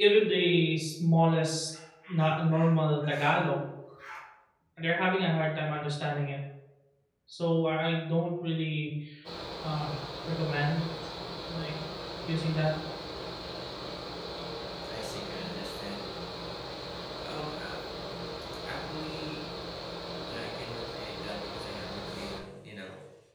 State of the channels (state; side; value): identical; both; correlation 1.00